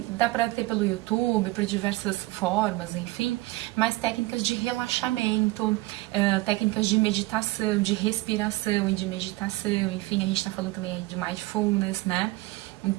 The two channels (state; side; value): quieter; left; 20.0 dB